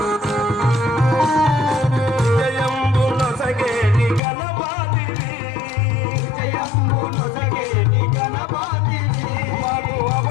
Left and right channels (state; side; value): drops out; right; at 4.2 s